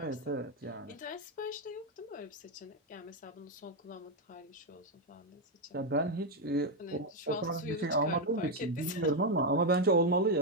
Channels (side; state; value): both; normal; correlation 0.03